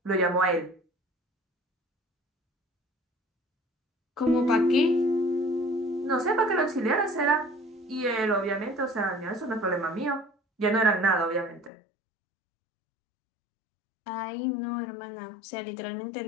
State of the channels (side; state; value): right; drops out; at 11.7 s